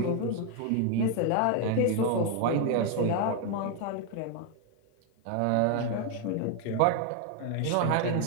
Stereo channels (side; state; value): both; different; correlation 0.01